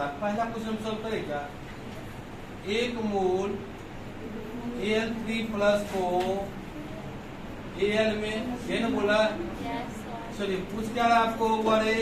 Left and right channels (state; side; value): identical; both; correlation 1.00